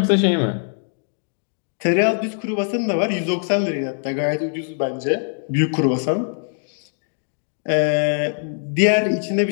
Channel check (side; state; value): right; silent; digital silence